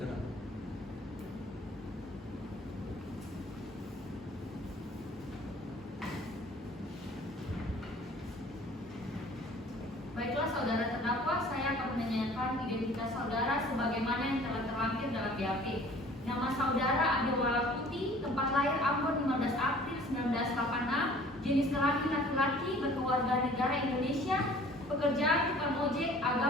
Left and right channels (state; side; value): normal; both; correlation 0.50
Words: Baiklah saudara terdakwa, saya akan menanyakan identitas saudara sebagaimana yang telah terlampir dalam BAP. Nama saudara Adewala Putih, tempat lahir Ambon 15 April 1986, jenis kelamin laki-laki, berkeluarga negara Indonesia, pekerjaan tukang ojek,